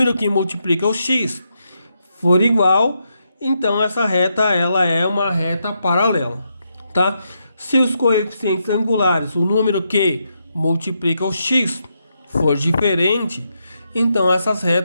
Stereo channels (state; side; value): inverted; both; correlation -0.82